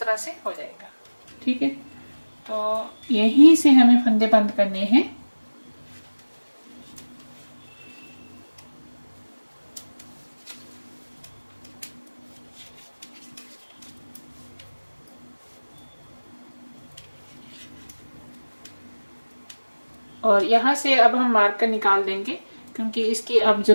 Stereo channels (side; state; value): both; inverted; correlation -1.00